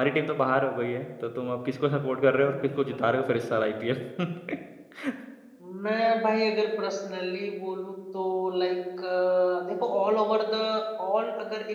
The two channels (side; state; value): both; identical; correlation 1.00